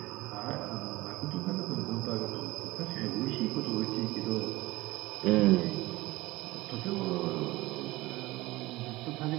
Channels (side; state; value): left; quieter; 19.6 dB